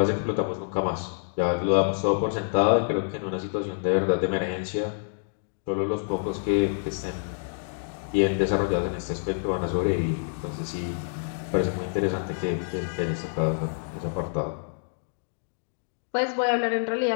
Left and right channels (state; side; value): silent; right; digital silence